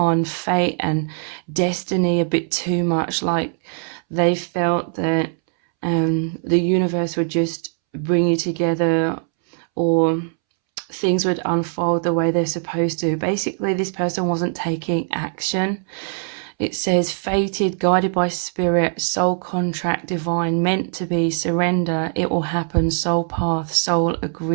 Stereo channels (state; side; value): silent; left; 65 dB below the other